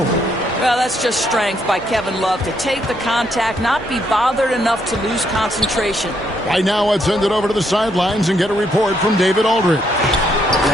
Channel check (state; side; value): normal; both; correlation 0.74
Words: Well, that's just strength by Kevin Love to take the contact, not be bothered enough to lose concentration. Right now, I'd send it over to the sidelines and get a report from David Aldridge.